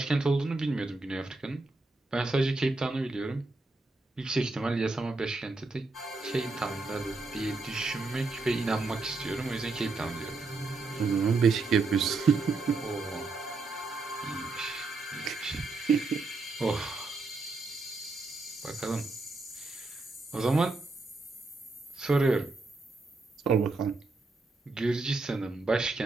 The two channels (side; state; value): left; quieter; 3.5 dB